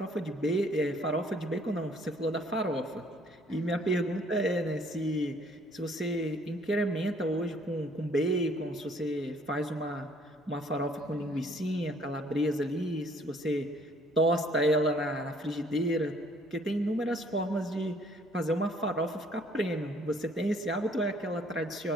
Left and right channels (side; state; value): both; normal; correlation 0.61